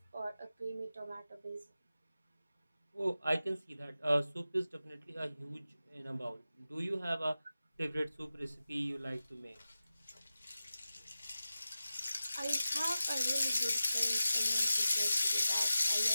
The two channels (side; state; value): both; inverted; correlation -0.94